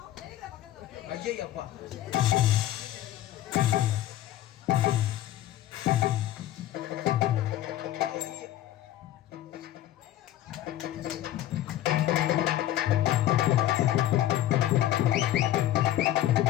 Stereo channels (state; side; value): quieter; right; 13.2 dB